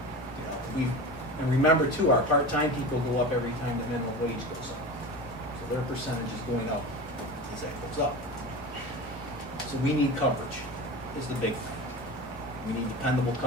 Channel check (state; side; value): normal; both; correlation 0.30